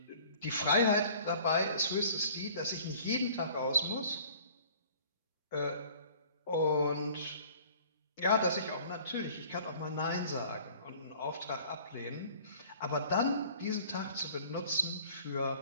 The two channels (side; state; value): both; inverted; correlation -0.50